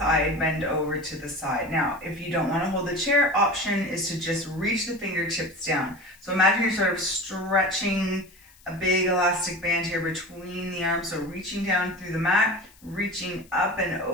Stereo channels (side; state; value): left; noise; hiss, 27 dB below the sound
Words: bend over to the side. Now, if you don't want to hold the chair, option is to just reach the fingertips down. So imagine you're sort of stretching a big elastic band here between the arms. So reaching down through the mat, reaching up and